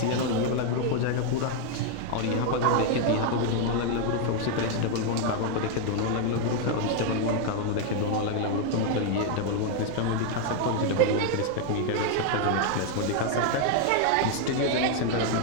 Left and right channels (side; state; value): both; different; correlation 0.01